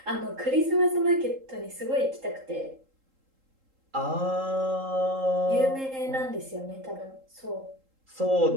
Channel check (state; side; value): late; left; 3.8 ms